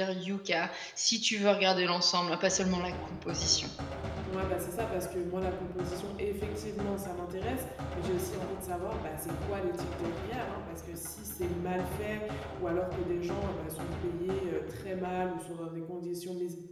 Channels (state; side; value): identical; both; correlation 1.00